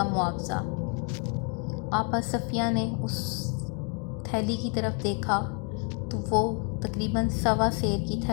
معاوضہ۔ آپا صفیہ نے اس تھیلی کی طرف دیکھا تو وہ تقریباً 1.25 سیر کی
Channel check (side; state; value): right; quieter; 38.3 dB